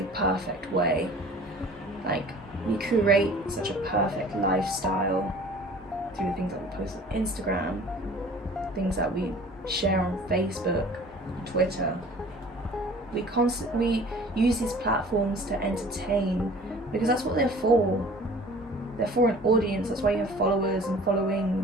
perfect way. Like, we curate such a perfect lifestyle through things that we post on Instagram, things that we share on Facebook, Twitter. We use these platforms to entertain because that's what they're for. They're for an audience. That's why you have followers and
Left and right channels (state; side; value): normal; both; correlation 0.47